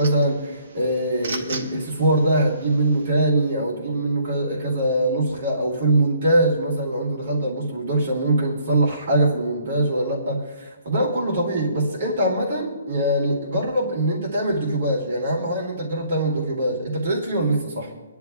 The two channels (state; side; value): inverted; both; correlation -0.63